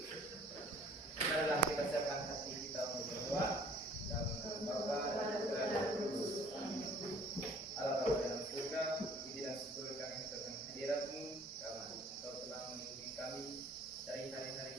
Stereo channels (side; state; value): both; normal; correlation 0.54